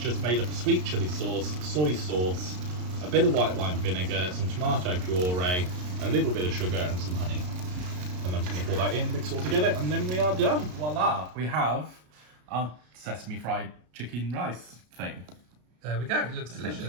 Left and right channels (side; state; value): left; late; 33 ms